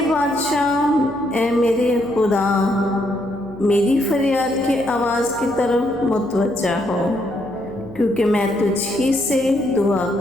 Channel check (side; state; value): left; noise; hum, 20 dB below the sound